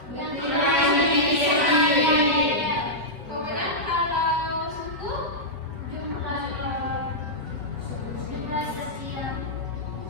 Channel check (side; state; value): left; late; 4.9 ms